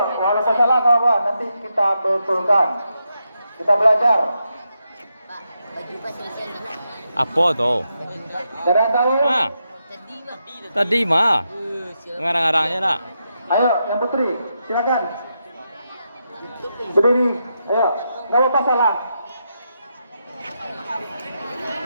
walaupun salah atau apa, nanti kita betulkan. Kita belajar. Apa tahu? Ada yang tahu? Ah, tadi mah ngarang-ngarangnya nak. Ayo, yang putri, silakan. Berdiri. Ayo, nggak apa-apa salah.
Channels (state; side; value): inverted; both; correlation -0.84